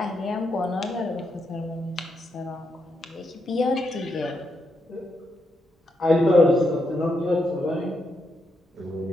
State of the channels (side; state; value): both; normal; correlation 0.81